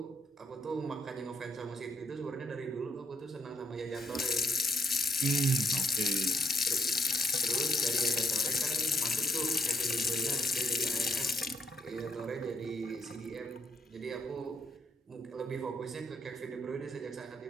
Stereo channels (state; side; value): normal; both; correlation 0.74